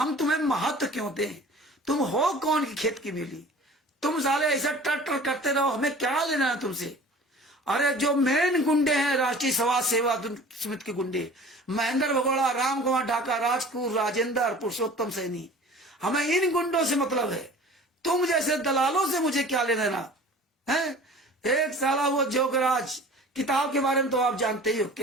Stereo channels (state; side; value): normal; both; correlation 0.44